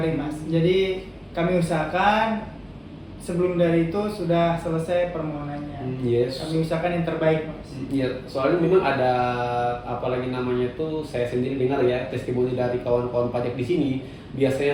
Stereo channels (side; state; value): both; identical; correlation 1.00